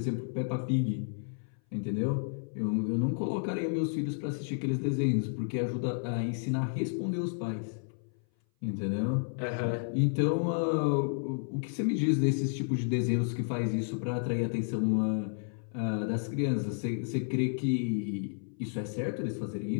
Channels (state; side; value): silent; right; 57 dB below the other